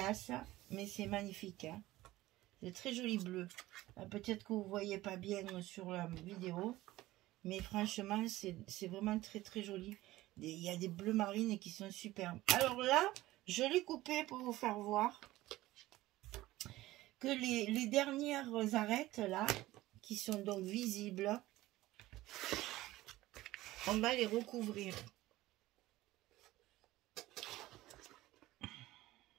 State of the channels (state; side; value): quieter; left; 17.1 dB